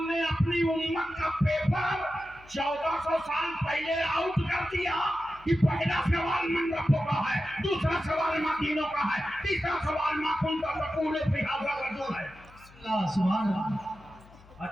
ने अपनी उम्मत का पेपर 1400 साल पहले आउट कर दिया कि पहला सवाल मन रब्बों का है, दूसरा सवाल माँ दीनों का है, तीसरा सवाल माँ कुंता तकूल फी हाज़ा रजूल है। सुभान अल्लाह।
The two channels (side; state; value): left; noise; hum, 24 dB below the sound